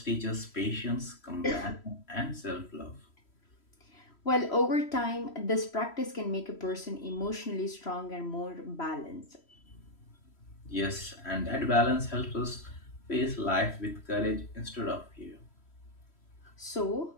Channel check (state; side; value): late; right; 3.1 ms